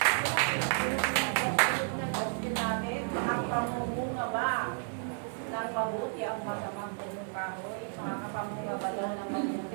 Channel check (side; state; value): left; silent; 56 dB below the other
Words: Ang pamumunga ba ng mabuti ang masamang punong kahoy? Makakapamunga ba daw ng